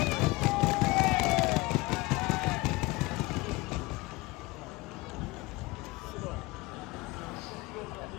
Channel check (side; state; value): right; quieter; 22.4 dB